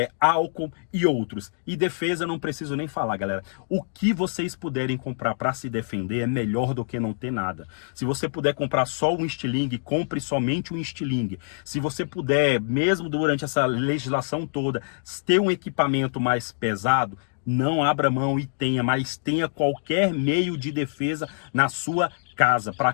álcool e outros. E defesa eu não preciso nem falar, galera. O que vocês puderem comprar para se defender é melhor do que não ter nada. Se você puder comprar só um estilingue, compre somente um estilingue. Se você puder, mesmo durante essa legislação toda, ter um equipamento mais pesado, não abra mão e tenha, mas tenha qualquer meio de defesa na sua casa, para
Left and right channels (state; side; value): silent; right; digital silence